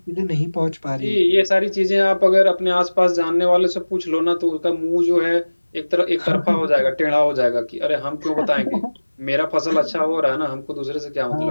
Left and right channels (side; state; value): both; inverted; correlation -1.00